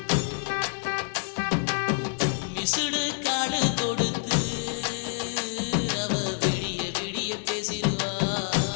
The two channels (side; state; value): right; silent; digital silence